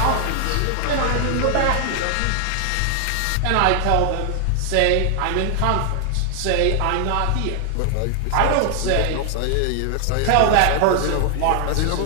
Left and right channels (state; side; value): different; both; correlation 0.00